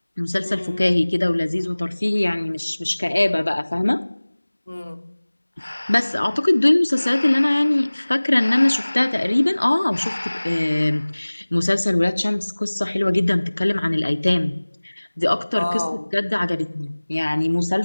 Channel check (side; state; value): both; inverted; correlation -1.00